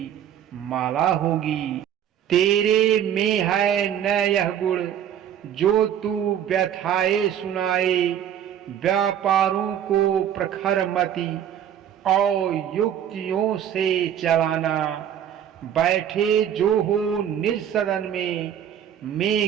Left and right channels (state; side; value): quieter; left; 9.8 dB